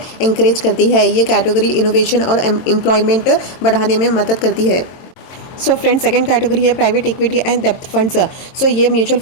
एंकरेज करती है। ये कैटेगरी इनोवेशन और एम्प्लॉयमेंट बढ़ाने में मदद करती है। सो फ्रेंड्स, सेकंड कैटेगरी है प्राइवेट इक्विटी एंड डेप्थ फंड्स। सो ये म्यूचुअल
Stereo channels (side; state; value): right; late; 23 ms